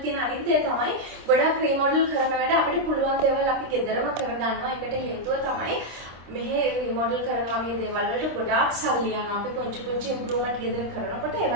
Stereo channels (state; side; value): late; left; 26 ms